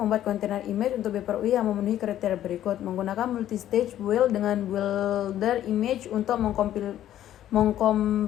kontainer image untuk Beeper UI yang memenuhi kriteria berikut. Menggunakan multistage build dengan builder image untuk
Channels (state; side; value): quieter; right; 12.0 dB